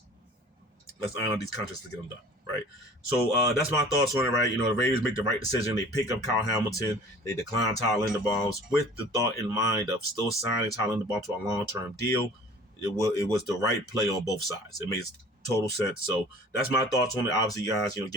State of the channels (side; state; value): both; normal; correlation 0.46